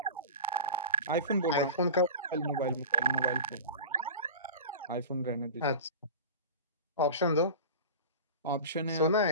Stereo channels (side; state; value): both; inverted; correlation -0.34